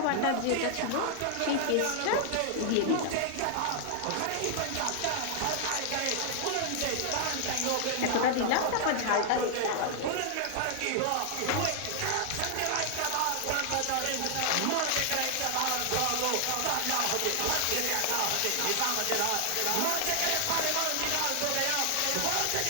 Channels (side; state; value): both; different; correlation 0.00